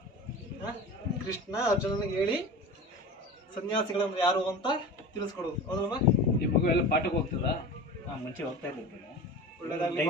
ಕೃಷ್ಣ ಅರ್ಜುನನಿಗೆ ಹೇಳಿ ಸನ್ಯಾಸಿಗಳಂದ್ರೆ ಯಾರು ಅಂತ ತಿಳಿಸ್ಕೊಡೋದು ಹೌದಲ್ವಾ? ಈ ಮಗು ಎಲ್ಲ ಪಾಠಕ್ಕೆ ಹೋಗ್ತದ? ಮುಂಚೆ ಹೋಗ್ತಾ ಇರ್ತಾರೆ. ಒಳ್ಳೆದಾಗ್ಲಿ.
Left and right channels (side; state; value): both; normal; correlation 0.33